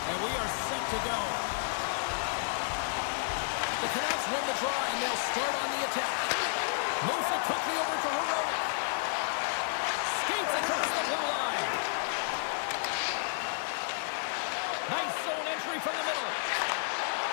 and we are set to go. The Canucks win the draw, and they'll start on the attack. Moves it quickly over to Heroic. Skates across the blue line. Nice zone entry from the middle.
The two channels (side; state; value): right; silent; digital silence